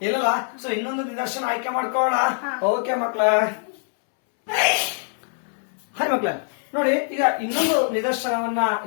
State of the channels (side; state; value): right; silent; 63 dB below the other